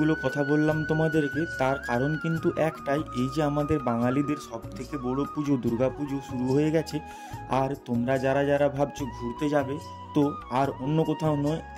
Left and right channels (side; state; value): both; identical; correlation 1.00